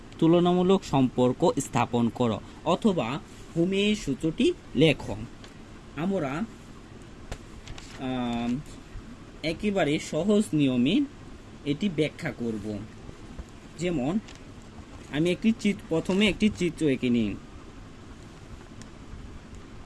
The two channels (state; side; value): identical; both; correlation 1.00